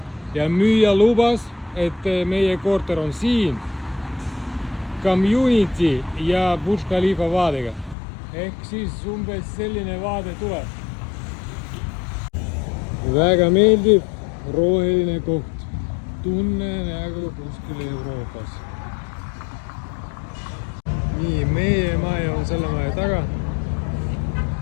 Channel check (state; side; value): drops out; right; at 8.0 s